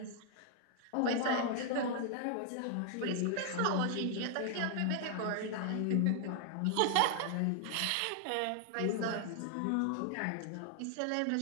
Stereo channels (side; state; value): both; different; correlation 0.00